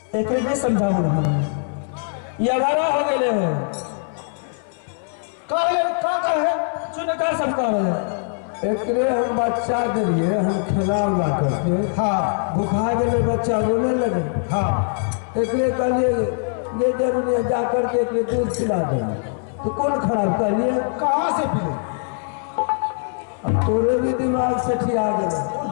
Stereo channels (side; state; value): right; silent; 60 dB below the other